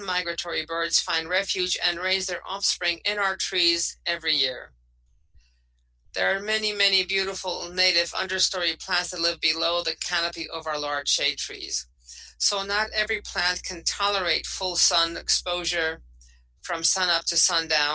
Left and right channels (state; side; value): identical; both; correlation 1.00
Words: migratory birds find refuge and raise their offspring in our trees every year. There are many, many beautiful native understory plants that live below the canopy of our large shade trees. So not every plant can tolerate full sun exposure from sunup to